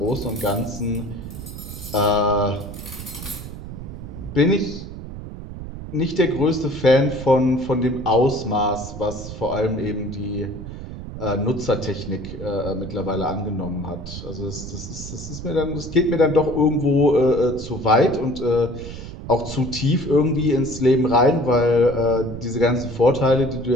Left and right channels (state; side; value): noise; right; rumble, 10 dB below the sound